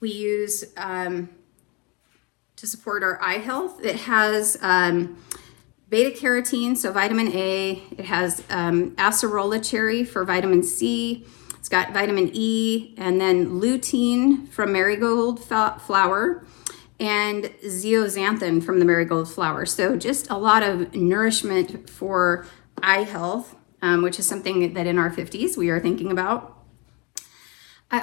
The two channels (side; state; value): right; quieter; 29.7 dB